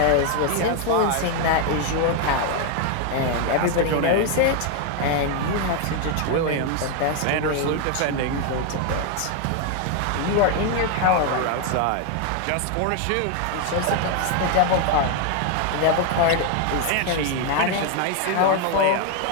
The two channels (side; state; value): both; different; correlation 0.01